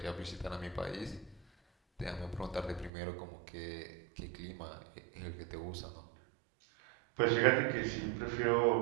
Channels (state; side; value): drops out; left; at 2.9 s